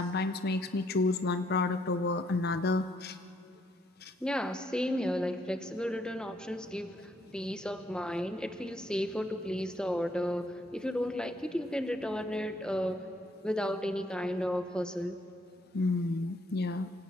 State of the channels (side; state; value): both; normal; correlation 0.71